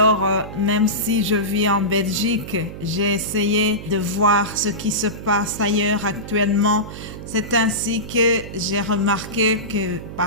même si je vis en Belgique, j'ai essayé de voir ce qui se passe ailleurs actuellement. C'est ainsi que j'ai remarqué que,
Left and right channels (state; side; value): noise; right; hum, 11 dB below the sound